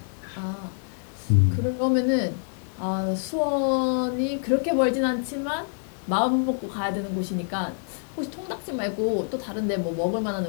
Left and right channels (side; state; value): right; silent; digital silence